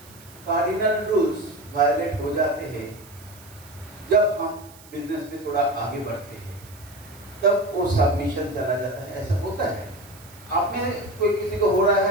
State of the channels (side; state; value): right; noise; hiss, 22 dB below the sound